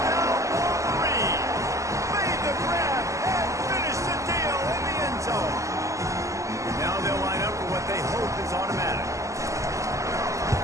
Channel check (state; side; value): late; left; 0.15 ms